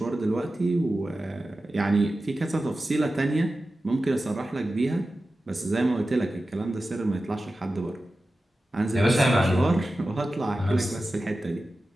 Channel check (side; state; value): both; normal; correlation 0.94